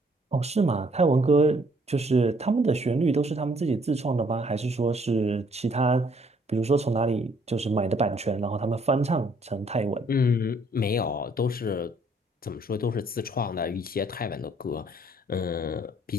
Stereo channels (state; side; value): normal; both; correlation 0.64